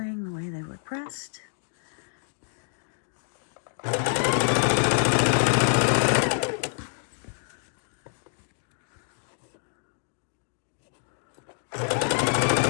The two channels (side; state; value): right; silent; digital silence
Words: the way they were pressed.